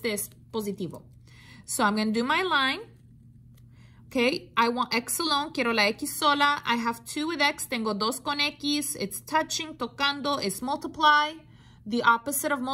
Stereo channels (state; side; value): identical; both; correlation 1.00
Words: es positivo. So I'm going to do my line. Okay, I want X alone, quiero la X sola. I have 2 with X, tengo 2 con X. It's touching, tocando, es multiply. The opposite of